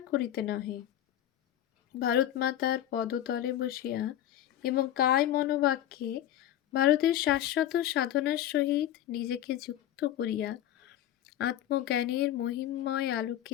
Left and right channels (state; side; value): quieter; right; 12.2 dB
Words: করিতে নহে, ভারত মাতার পদতলে বসিয়া এবং কায় মনোবাক্যে ভারতের শাশ্বত সাধনার সহিত নিজেকে যুক্ত করিয়া আত্মজ্ঞানের মহিমময়